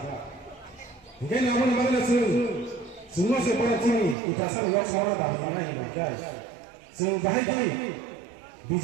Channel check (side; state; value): left; drops out; at 4.2 s